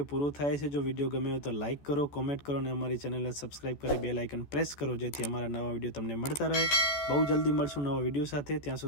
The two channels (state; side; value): late; right; 14 ms